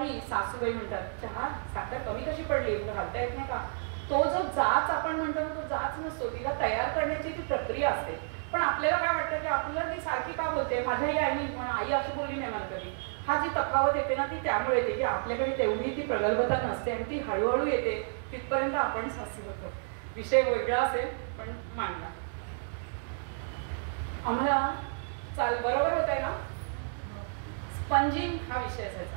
सासूबाई म्हणतात, चहा साखर कमी कशी पडली, तुला घालता येत नाही का. तो जो जाच आपण म्हणतो ना, तो जाच नसतो, तिला तयार करण्याची ती प्रक्रिया असते. पण आपल्याला काय वाटतं की आपल्याला ती सारखी का बोलते, माझ्याही आईने पण आई अशी बोलली नाही मला कधी. हा जी तफावत येते ना ती त्यामुळे येते की आपल्याकडे तेवढी ती प्रगल्भता नसते आणि ती हळूहळू येते. तिथपर्यंत आपण सासू होतो. विषय वेगळा असेल पण मांडला. आम्हाला बरोबर होत आहे ना, स्पंजिंग हा विषय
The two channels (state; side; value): silent; left; digital silence